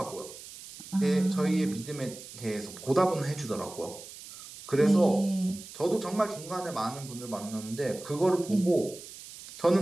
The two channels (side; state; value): right; noise; hiss, 15 dB below the sound